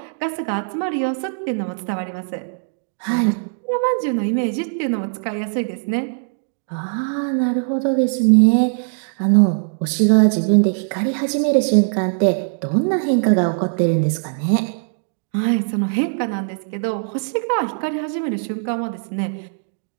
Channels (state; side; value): silent; left; digital silence